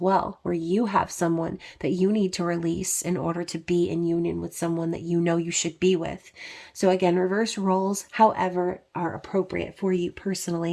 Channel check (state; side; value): identical; both; correlation 1.00